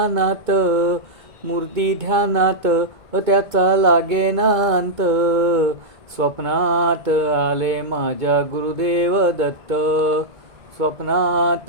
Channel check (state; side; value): late; left; 2.2 ms